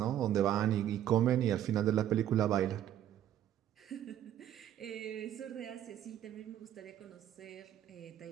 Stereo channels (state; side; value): quieter; left; 11.3 dB